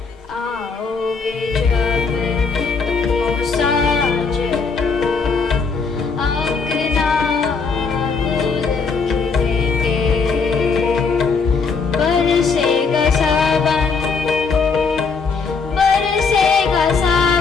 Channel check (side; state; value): right; quieter; 4.9 dB